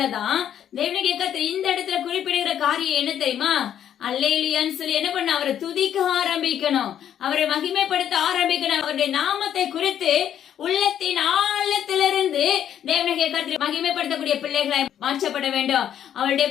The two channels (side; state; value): right; quieter; 10.0 dB